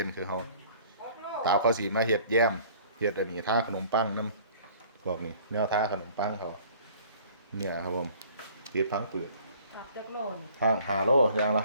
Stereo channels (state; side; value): inverted; both; correlation -0.52